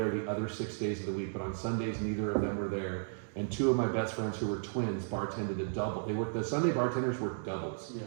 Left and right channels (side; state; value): left; silent; digital silence